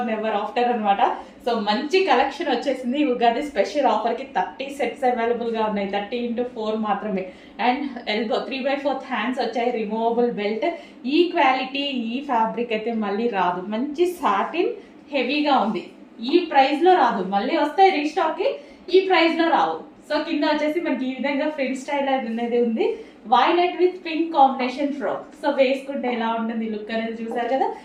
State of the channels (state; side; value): identical; both; correlation 1.00